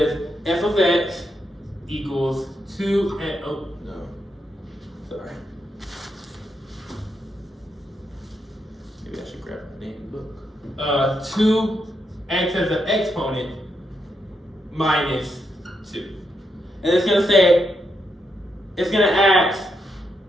f of x equals 2 and, oh, no, sorry. Maybe I should grab my name book. 2x as an exponent minus 2. And it's going to say, it's going to ask,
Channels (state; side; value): normal; both; correlation 0.81